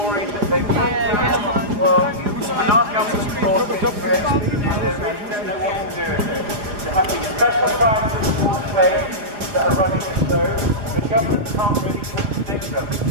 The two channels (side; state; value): left; late; 4.9 ms